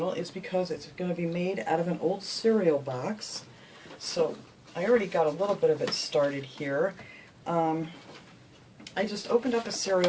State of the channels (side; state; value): both; identical; correlation 1.00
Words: is because it's going to be made out of an old cereal box. So I already got a little bit of it started here. I just opened up a